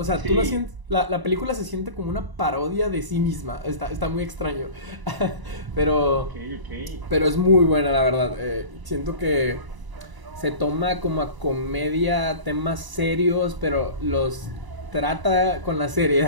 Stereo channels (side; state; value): left; late; 1.0 ms